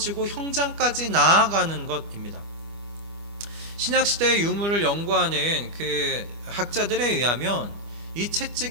형장까지 나아가는 것입니다. 신약시대의 유물을 연구하는 그 학자들에 의하면 이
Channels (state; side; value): late; left; 25 ms